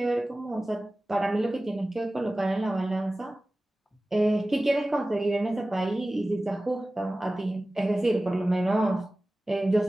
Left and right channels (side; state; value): both; normal; correlation 0.97